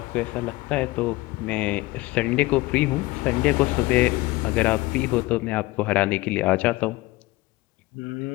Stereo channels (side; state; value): right; quieter; 20.5 dB